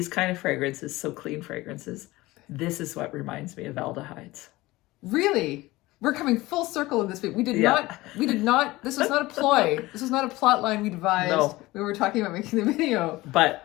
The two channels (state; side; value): quieter; right; 19.4 dB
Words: kind of fragrances, so clean fragrances, this is what reminds me of Aldehydes. Really? We're coming full circle in this. We did not, this was not a ploy. This was not a plot line we devised. No. We were talking about making the video.